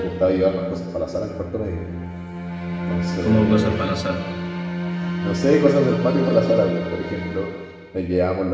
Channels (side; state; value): both; identical; correlation 1.00